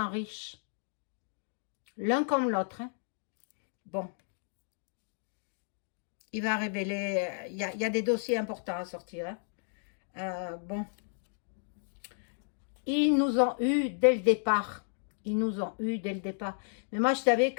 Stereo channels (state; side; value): silent; right; digital silence